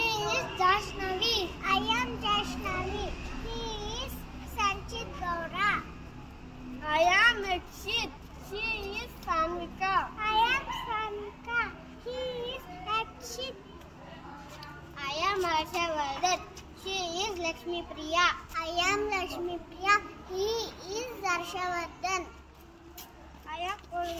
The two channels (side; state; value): both; identical; correlation 1.00